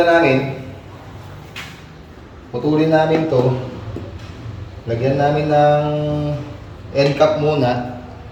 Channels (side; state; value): both; identical; correlation 1.00